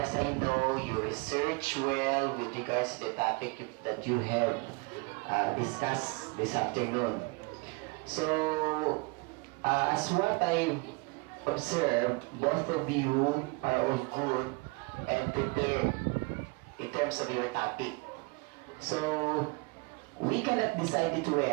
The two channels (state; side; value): quieter; left; 28.8 dB